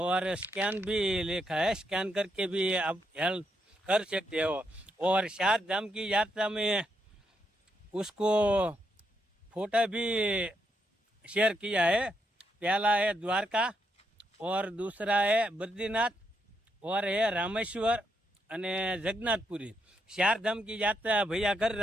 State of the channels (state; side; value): normal; both; correlation 0.79